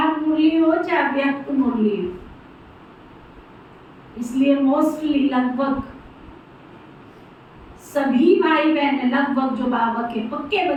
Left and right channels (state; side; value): identical; both; correlation 1.00